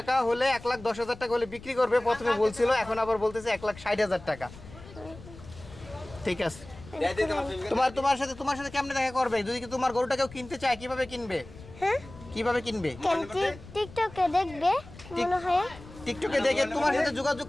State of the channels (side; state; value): left; noise; rumble, 18 dB below the sound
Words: হলে 1,10,000 টাকা হলে বিক্রি করবে প্রথমে বলছিল, এখন আবার বলতেছে 1,60,000 টাকা। ঠিক আছে, তোমার সাথে কেমনে দেখা করবে? যদি কি তোমার গরুটা কেউ কিনতে চায়, কিভাবে কিনবে? হ্যাঁ, কিভাবে কিনবে? টিকটকে দেখবে মনে হয়। টিকটকে দেখে তোমার সাথে যোগাযোগ